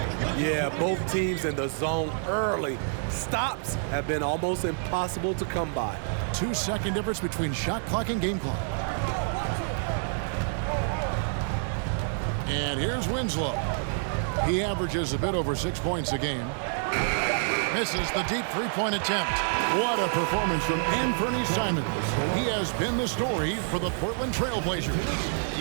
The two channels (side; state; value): left; silent; digital silence